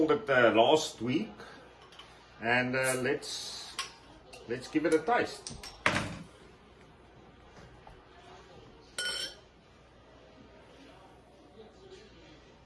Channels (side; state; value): both; identical; correlation 1.00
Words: it last week, and let's give it a taste.